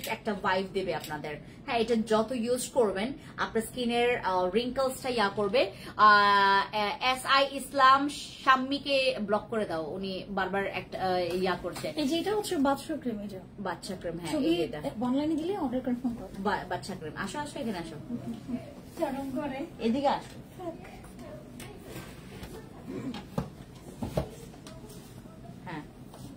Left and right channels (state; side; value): identical; both; correlation 1.00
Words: একটা ভাইব দেবে আপনাদের। হ্যাঁ, এটা যত ইউজ করবেন আপনার স্কিনের রিঙ্কলসটা ইয়া করবে। SI ইসলাম শাম্মীকে ব্লক করে দাও, উনি বারবার একটা ইয়া করছে। এই যেটা হচ্ছে বাচ্চা ক্রিম, এটা বাচ্চা ক্রিম। হ্যাঁ, ছবি এটা অনলাইনে দিলে অর্ডার কনফার্ম করো। বাচ্চা ক্রিম। আসো আসো, এখানে আসো, চরম করে এদিকে আসো। হ্যাঁ,